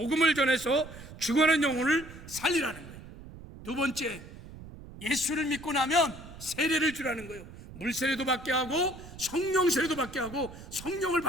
전해서 죽어가는 영혼을 살리라는 거예요. 두 번째, 예수를 믿고 나면 세례를 주라는 거예요. 물세례도 받게 하고 성령 세례도 받게 하고 성령을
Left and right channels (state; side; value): noise; right; rumble, 15 dB below the sound